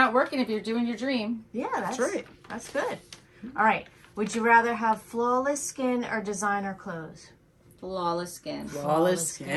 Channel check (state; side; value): identical; both; correlation 1.00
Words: working if you're doing your dream. Yeah, that's right. That's good. All right. Would you rather have flawless skin or designer clothes? Flawless skin. Flawless